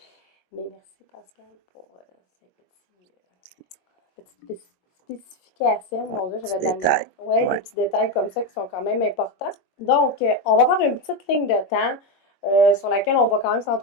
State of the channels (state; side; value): late; right; 22 ms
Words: mais merci Pascal pour ces petites spécifications. Ouais, Mon Dieu, petit j'avais de la détail. misère. Oui, des Ouais. petits détails comme ça qui sont quand même importants. Donc, on va faire une petite ligne de temps sur laquelle on va quand même